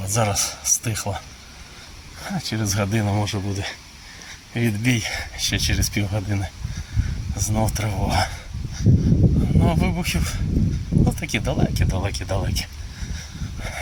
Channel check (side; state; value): both; identical; correlation 1.00